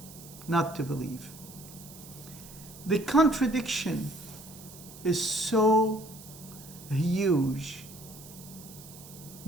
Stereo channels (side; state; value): right; noise; hiss, 17 dB below the sound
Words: not to believe. The contradiction is so huge